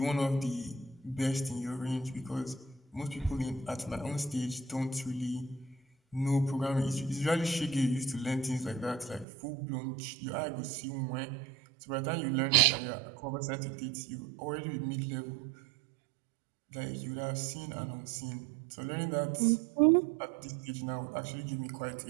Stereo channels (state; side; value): drops out; left; at 9.2 s